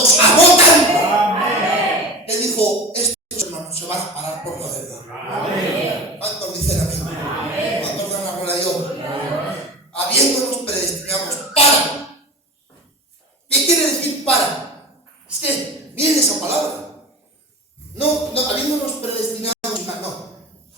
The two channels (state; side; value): normal; both; correlation 0.31